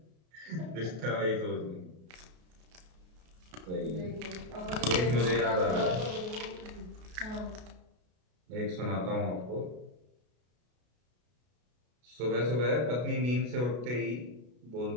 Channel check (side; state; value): left; late; 33 ms